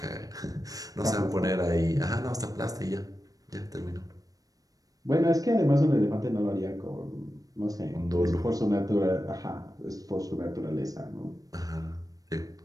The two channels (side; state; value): left; late; 0.18 ms